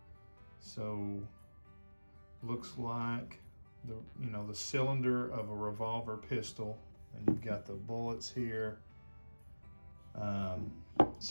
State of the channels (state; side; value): inverted; both; correlation -1.00